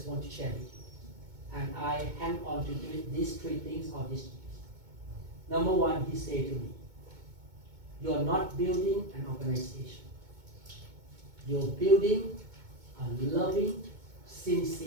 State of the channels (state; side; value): late; left; 2.2 ms